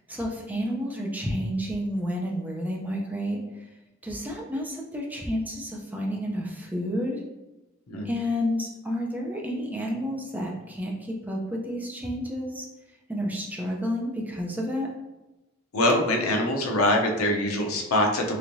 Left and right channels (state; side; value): normal; both; correlation 0.45